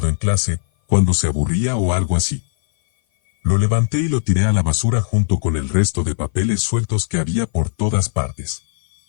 en clase, cuando se aburría o algo así. Lo levanté y lo tiré a la basura junto con el resto de papeles sueltos que había por todas partes.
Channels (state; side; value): silent; right; 56 dB below the other